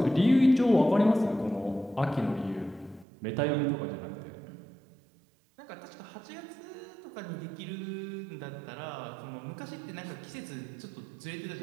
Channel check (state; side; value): drops out; left; at 3.1 s